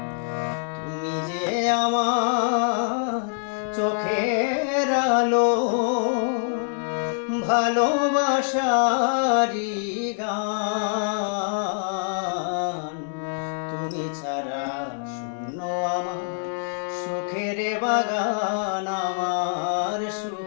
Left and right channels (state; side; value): silent; right; digital silence